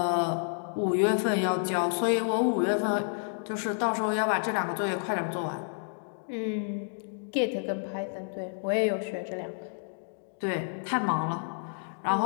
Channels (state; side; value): silent; right; digital silence